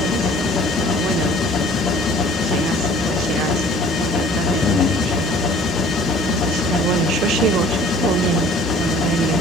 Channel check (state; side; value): normal; both; correlation 0.51